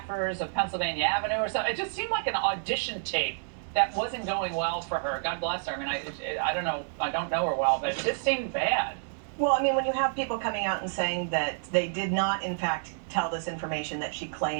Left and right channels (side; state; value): left; silent; digital silence